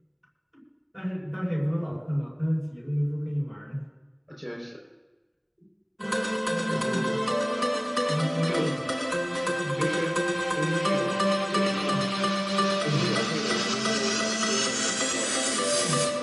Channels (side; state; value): both; identical; correlation 1.00